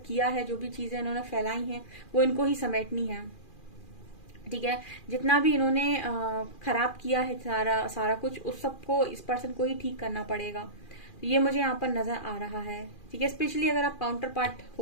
किया है, जो भी चीजें इन्होंने फैलाई हैं, वो इनको ही समेटनी है, ठीक है। जितना भी इन्होंने खराब किया है, सारा कुछ, उस सबको इस पर्सन को ही ठीक करना पड़ेगा। तो ये मुझे यहाँ पर नजर आ रहा है, ठीक है। स्पेशली अगर आप काउंटर पार्ट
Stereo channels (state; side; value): late; right; 2.4 ms